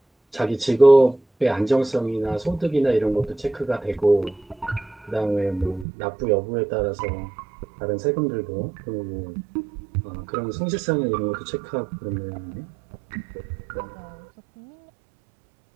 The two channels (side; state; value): left; drops out; at 5.9 s